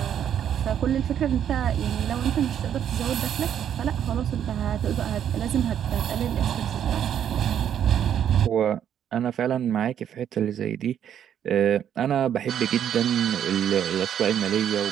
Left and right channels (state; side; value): quieter; left; 9.5 dB